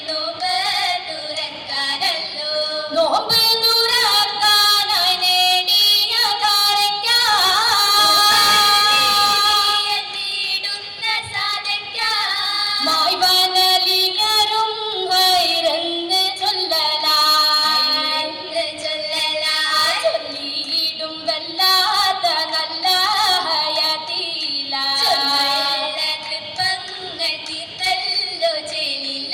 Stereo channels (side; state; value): both; identical; correlation 1.00